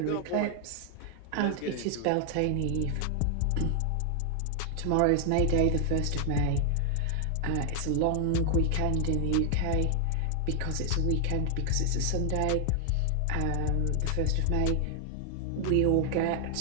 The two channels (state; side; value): different; both; correlation 0.00